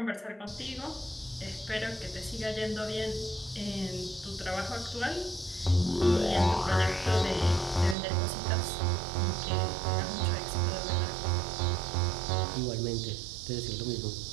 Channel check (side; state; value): left; drops out; at 8.0 s